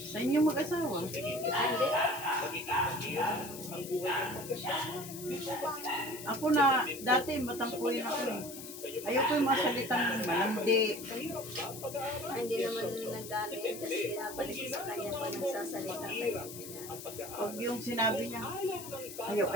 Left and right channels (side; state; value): left; noise; hiss, 12 dB below the sound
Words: Sa inyong mag-asawa. tingin niyo, Hindi. magiging mahirap ang buhay ng mag-asawa. Di po ba? Ako na, dati matampuin ako eh. Ayoko yung mga salitang malandi. Mahirap ba ang pag-aaral? Hindi naman nag-ano yan kasi pinapalik ko sa kanya pa nagsasalita kayo. Ang pag-aaral. Huwag yung sinabi niya, Ayaw ng bata